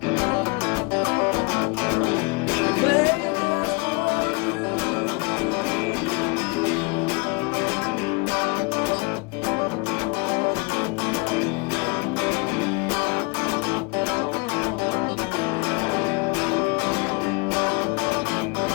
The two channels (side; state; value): right; quieter; 29.4 dB